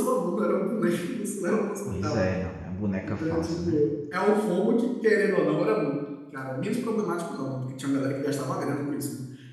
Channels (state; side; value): identical; both; correlation 1.00